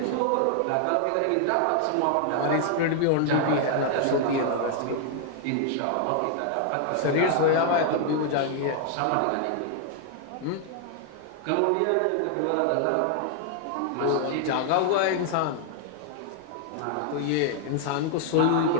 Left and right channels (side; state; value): both; different; correlation 0.00